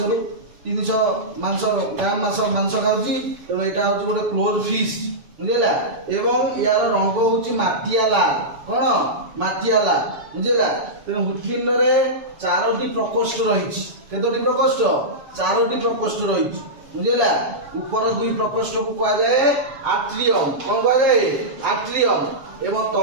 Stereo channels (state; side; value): late; left; 7.0 ms